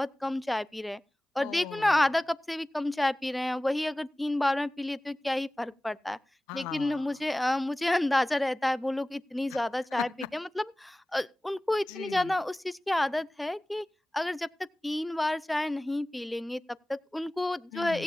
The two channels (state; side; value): normal; both; correlation 0.98